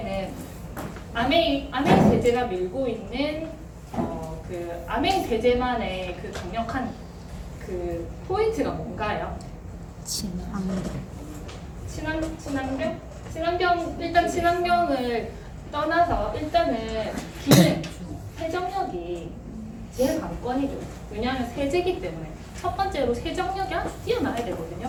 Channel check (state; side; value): identical; both; correlation 1.00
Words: 아메이 세제가 밀고 있는 그 아메이 세제만의 그 강력한 그 포인트가 뭔가요? 친환경 일단 친환경을 떠나서 일단은 기능 세정력이 제일 관건이죠. 왜냐하면 세제기 때문에 첫 번째로 세정력이 아주 뛰어나야